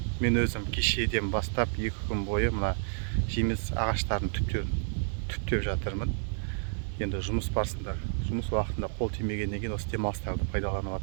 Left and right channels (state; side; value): silent; left; 58 dB below the other